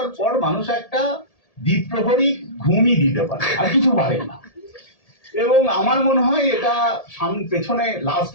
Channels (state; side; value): late; right; 1.7 ms